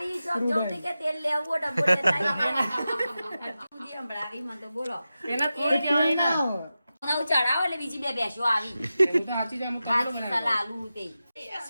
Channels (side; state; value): both; inverted; correlation -0.93